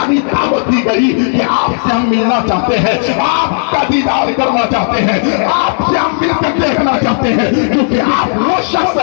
दावत दी गई कि आपसे हम मिलना चाहते हैं, आपका दीदार करना चाहते हैं, आपसे हम मिलकर देखना चाहते हैं, क्योंकि आप वो शख्स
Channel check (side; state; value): right; silent; 65 dB below the other